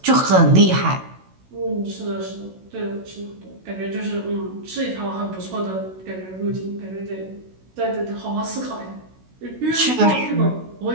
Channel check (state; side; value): late; left; 16 ms